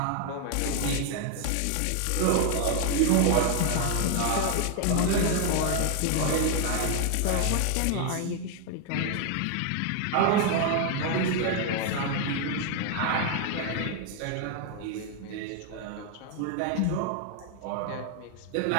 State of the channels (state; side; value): different; both; correlation 0.00